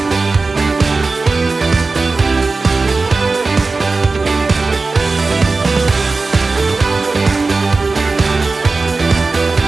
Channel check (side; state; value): left; quieter; 3.8 dB